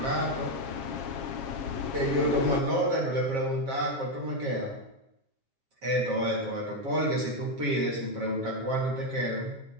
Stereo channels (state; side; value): late; left; 7.4 ms